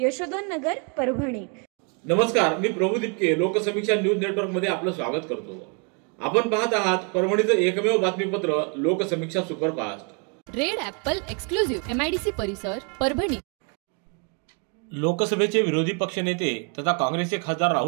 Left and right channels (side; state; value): left; quieter; 36.0 dB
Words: नगर, परभणी। नमस्कार, मी प्रभू दीपके लोकसमीक्षा न्यूज नेटवर्क मध्ये आपलं स्वागत करतो। आपण पाहत आहात परभणीचं एकमेव बातमीपत्र Loksamiksha superfast. Red Apple exclusive MIDC परिसर, परभणी। लोकसभेचे विरोधी पक्षनेते तथा काँग्रेसचे खासदार